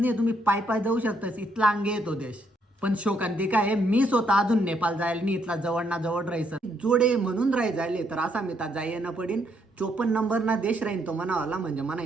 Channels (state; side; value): normal; both; correlation 0.73